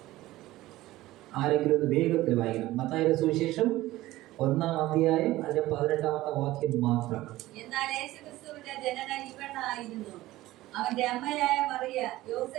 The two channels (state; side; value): quieter; left; 16.9 dB